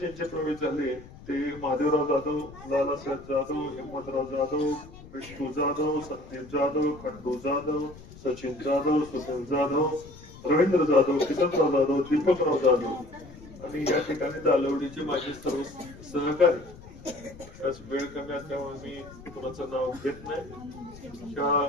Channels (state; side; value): noise; left; rumble, 18 dB below the sound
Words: प्रवेश झाले ते महादेवराव जाधव, लालासाहेब जाधव, हिम्मतराव जाधव, विष्णू जाधव, संदीप जाधव, खंडू जाधव, सचिन जाधव, सुनील जाधव, रवींद्र जाधव, किसनराव जाधव, दीपकराव जाधव आणि या ठिकाणी दालवडीचे माझे सर्व सहकारी. वेळ कमी असल्यामुळे मी कोणाचं नाव घेत नाही.